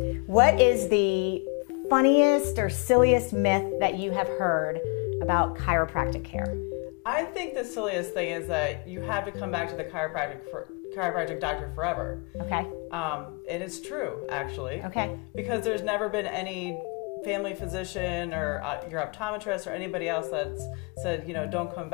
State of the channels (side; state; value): right; quieter; 32.3 dB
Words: what is the funniest or silliest myth that you have heard about chiropractic care? I think the silliest thing is that you have to come back to the chiropractic doctor forever. Okay. And it's true, actually. Okay. Because there's never been any family physician or your optometrist or anybody else that's said, don't come